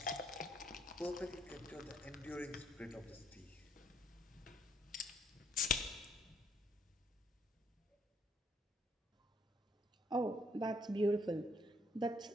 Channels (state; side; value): normal; both; correlation 0.68